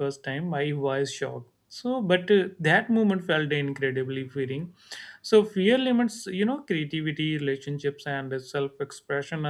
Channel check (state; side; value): identical; both; correlation 1.00